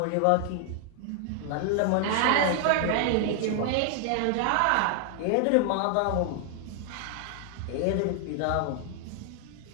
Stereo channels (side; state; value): both; different; correlation 0.00